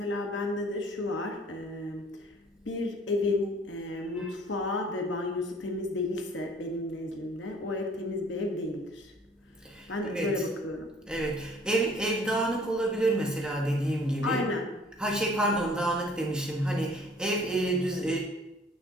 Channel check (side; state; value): both; normal; correlation 0.54